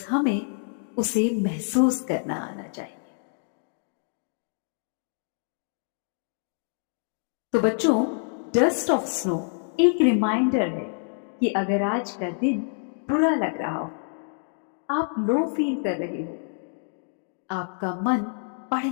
हमें उसे महसूस करना आना चाहिए। तो बच्चों, डस्ट ऑफ स्नो एक रिमाइंडर है कि अगर आज का दिन बुरा लग रहा हो, आप लो फील कर रहे हो, आपका मन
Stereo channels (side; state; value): right; silent; 60 dB below the other